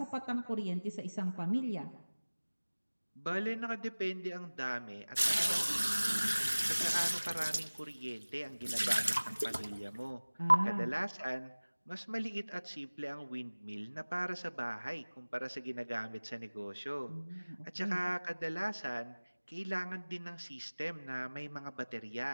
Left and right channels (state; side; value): inverted; both; correlation -1.00